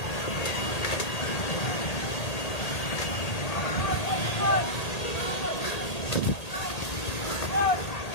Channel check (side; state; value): right; late; 1.8 ms